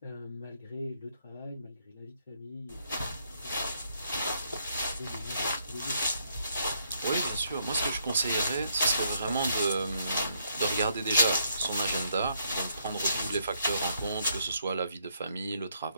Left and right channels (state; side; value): inverted; both; correlation -0.74